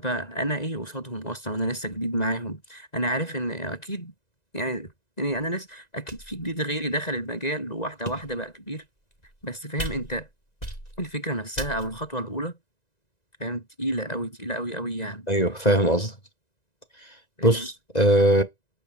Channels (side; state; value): right; late; 1.9 ms